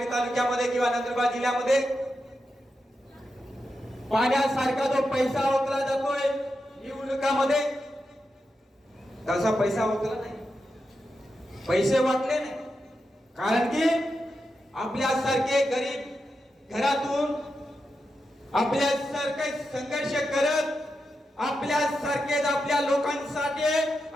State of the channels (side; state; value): both; normal; correlation 0.88